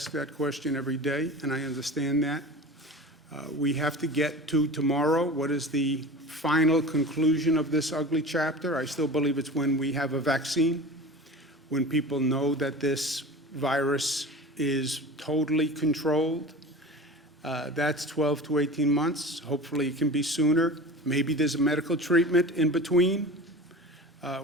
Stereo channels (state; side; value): normal; both; correlation 0.35